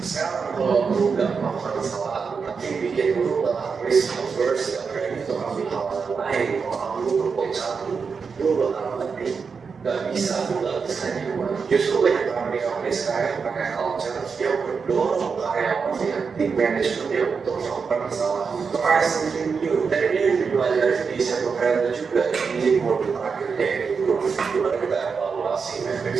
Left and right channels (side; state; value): left; quieter; 5.5 dB